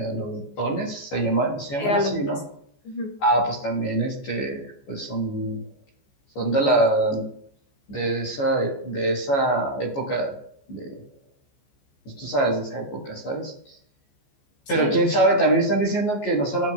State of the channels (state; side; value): late; right; 14 ms